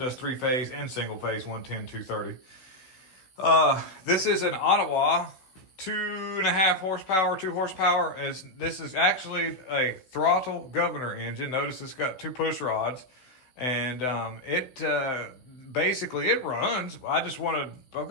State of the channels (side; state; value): right; late; 16 ms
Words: 3-phase and single phase 110 230. This is an Ottawa. 2.5 horsepower, 2 horsepower. This is actually a throttle governor engine. Notice it's got 2 push rods, and it runs. I've